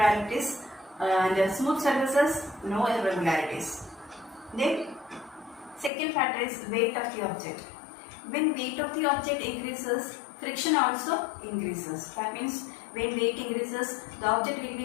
and smooth surfaces no irregularities. Then second factor is weight of the object. When weight of the object increases, friction also increases. That means when weight increases, the object will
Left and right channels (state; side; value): drops out; right; at 5.9 s